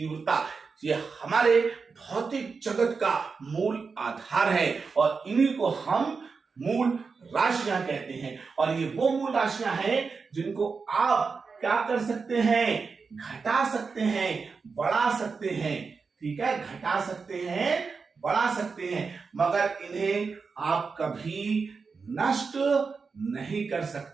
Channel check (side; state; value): left; quieter; 4.9 dB